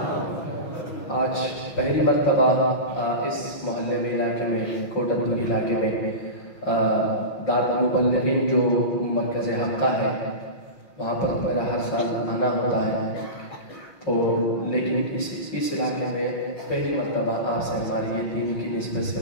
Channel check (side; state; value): right; late; 5.5 ms